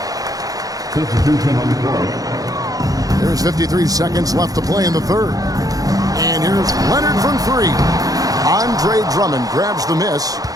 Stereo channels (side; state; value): left; late; 0.17 ms